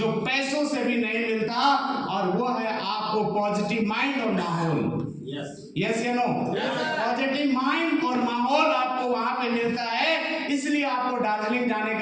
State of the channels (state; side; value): identical; both; correlation 1.00